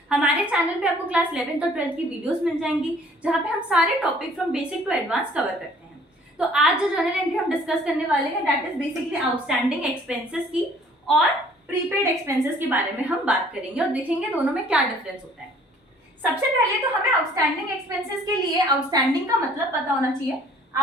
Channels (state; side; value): normal; both; correlation 0.56